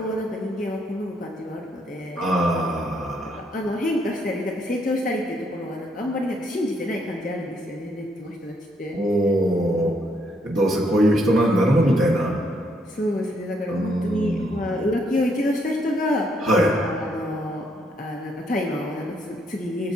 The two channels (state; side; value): normal; both; correlation 0.73